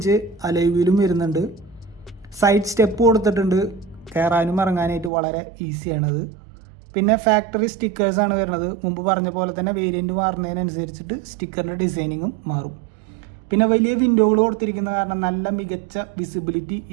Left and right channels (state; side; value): drops out; left; at 5.1 s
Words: അലോയ് വരുന്നുണ്ട്. സൈഡ് സ്റ്റെപ്പ് കൊടുത്തിട്ടുണ്ട്. കയറാനും ഇറങ്ങാനായിട്ട് വളരെ ഈസിയാണത്. പിന്നെ ഫാക്ടറി സ്റ്റിക്കേഴ്സാണ് വരുന്നത്. മുമ്പ് പറഞ്ഞ പോലെ തന്നെ വേരിയൻറ്റ് മാറുന്നതിനനുസരിച്ചിട്ട് സ്റ്റിക്കറിൻ്റെ ഡിസൈനിങ്ങും മാറും. പിന്നെ വലിയ വിൻഡോകൾ കൊടുത്തിരിക്കുന്ന കാരണം നല്ല മികച്ച വിസിബിലിറ്റി